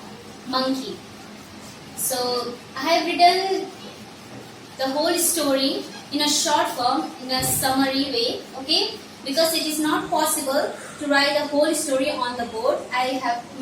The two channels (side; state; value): both; identical; correlation 1.00